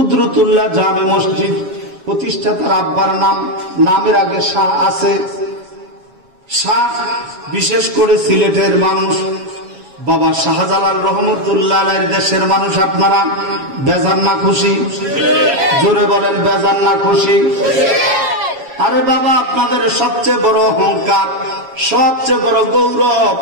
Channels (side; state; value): left; late; 7.3 ms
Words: জামে মসজিদ প্রতিষ্ঠাতার আব্বার নামের আগে শাহ আছে। শাহ বিশেষ করে সিলেটের মানুষ, বাবা শাহজালাল রহমতুল্লাহ আলাইহির দেশের মানুষ। আপনারা বেজান না খুশি? জোরে বলেন, বেজান না খুশি? আরে বাবা, আপনাদের সবচেয়ে বড় অহংকার, সবচেয়ে বড় গৌরব,